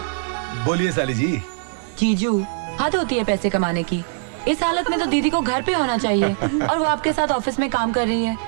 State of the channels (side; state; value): left; silent; digital silence